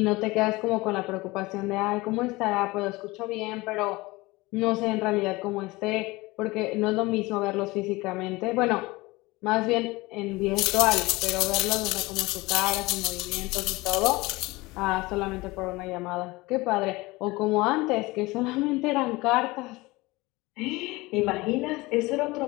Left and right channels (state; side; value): quieter; right; 21.8 dB